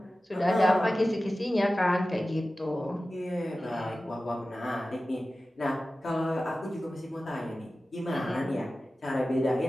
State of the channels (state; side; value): normal; both; correlation 0.95